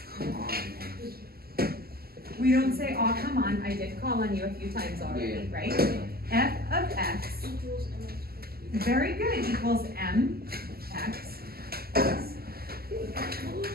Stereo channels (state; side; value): late; left; 0.45 ms